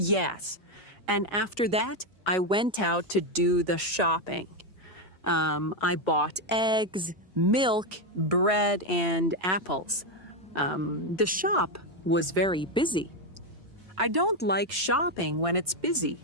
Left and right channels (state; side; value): normal; both; correlation 0.07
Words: And after that, I went out to do the shopping. I bought eggs, milk, bread, and apples. The shop was very busy. I don't like shopping when it's busy.